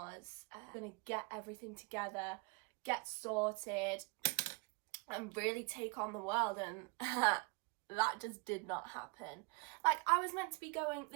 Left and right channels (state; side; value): quieter; left; 29.7 dB